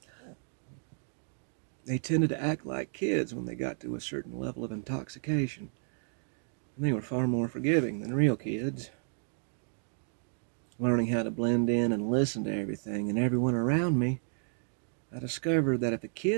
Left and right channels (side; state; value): left; silent; 56 dB below the other